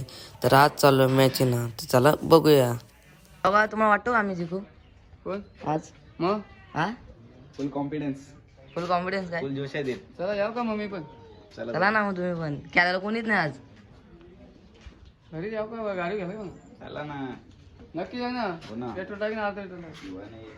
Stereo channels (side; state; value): both; identical; correlation 1.00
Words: तर आज चाललो मॅच ना, तर चला बघूया. बघा, तुम्हाला वाटतो आम्ही जिंकू कोण आज? मग हा, फुल कॉन्फिडन्स फुल कॉन्फिडन्स काय? फुल जोश आहे. चला जाऊ का मम्मी पण? चला ना मग तुम्ही पण. खेळायला कोणीच नाही आज. घरी जाऊ का गाडी घ्यायला मग? चला ना, नक्की जाऊ ना. हो ना, पेट्रोल टाकी ना.